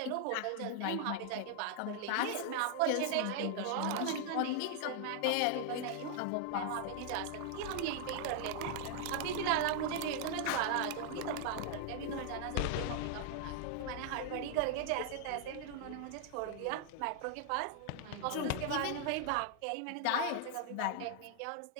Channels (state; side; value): different; both; correlation 0.00